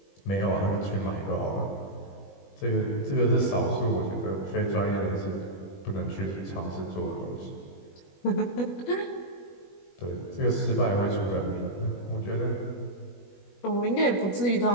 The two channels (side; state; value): right; late; 21 ms